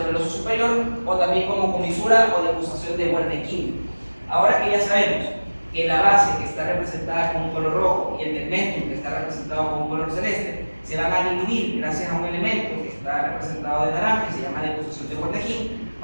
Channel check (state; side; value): inverted; both; correlation -1.00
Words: superior, o también como comisura o decusación de Wernicke. Ahora que ya sabemos que la base, que está representada con un color rojo, y el tegmentum, que está representado con un color celeste, se van a dividir gracias a un elemento que está representado de naranja y se llama decusación de Wernicke,